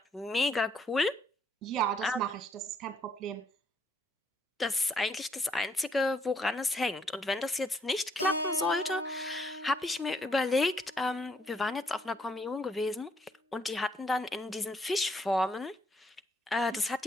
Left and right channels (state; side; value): normal; both; correlation 0.70